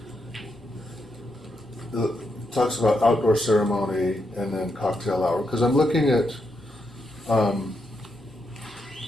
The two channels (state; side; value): normal; both; correlation 0.82